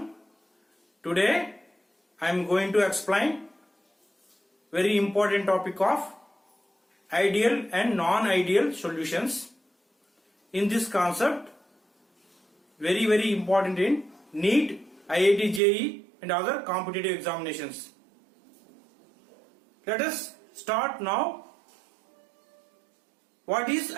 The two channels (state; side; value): drops out; left; at 15.6 s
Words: Today I am going to explain very important topic of ideal and non-ideal solutions. In this concept, very important in NEET, IIT JEE and other competitive examinations. Let us start now. What is